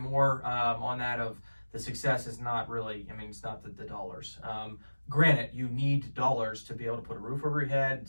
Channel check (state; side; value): inverted; both; correlation -1.00